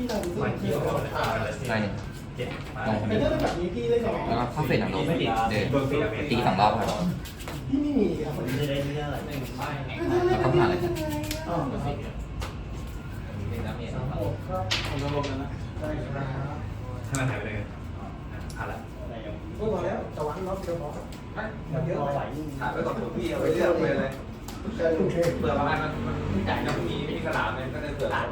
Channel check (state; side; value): identical; both; correlation 1.00